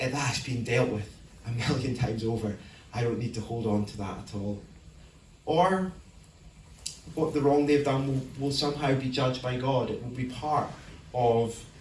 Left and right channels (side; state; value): both; identical; correlation 1.00